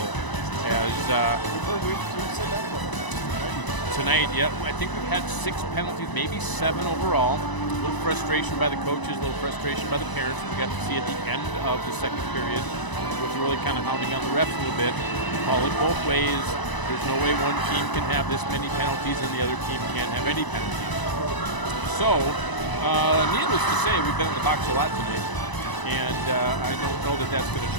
As we've said that a couple times tonight, yeah, I think we've had 6 penalties, maybe 7 overall. A little frustration by the coaches, a little frustration by the parents. We got to see at the end of the second period, was really kind of hounding on the refs a little bit. Call it both ways. There's no way one team can have this many penalties and the other team can't have any penalties. So, needless to say, we've been in the box a lot tonight, and I don't know that that's going to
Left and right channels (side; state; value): right; late; 1.0 ms